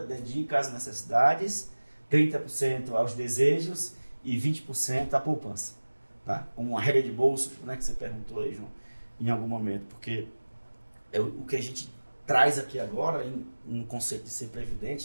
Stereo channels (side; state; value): both; inverted; correlation -1.00